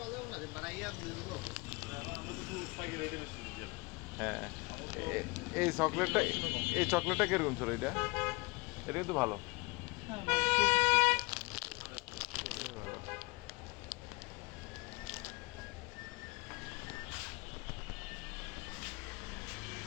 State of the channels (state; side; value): quieter; right; 25.7 dB